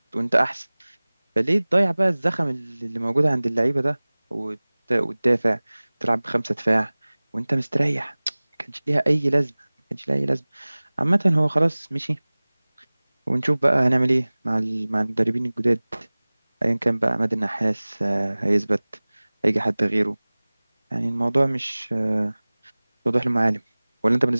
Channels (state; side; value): inverted; both; correlation -1.00